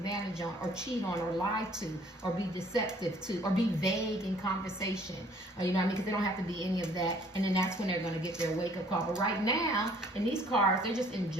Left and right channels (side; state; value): both; normal; correlation 0.58